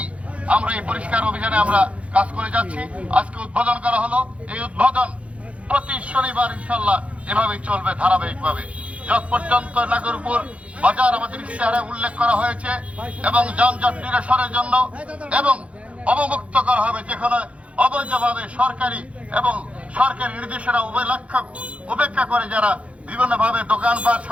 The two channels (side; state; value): left; late; 0.063 ms